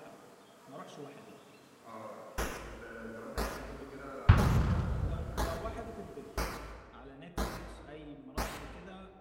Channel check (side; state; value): both; identical; correlation 1.00